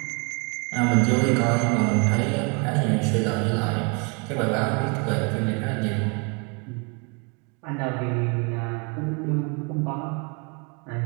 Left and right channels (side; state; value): left; quieter; 33.6 dB